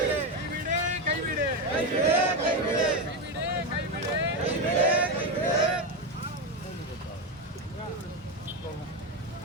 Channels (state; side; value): normal; both; correlation 0.12